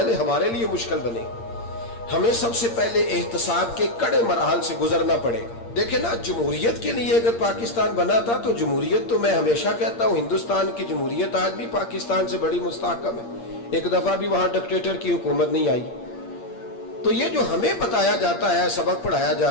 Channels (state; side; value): late; right; 8.6 ms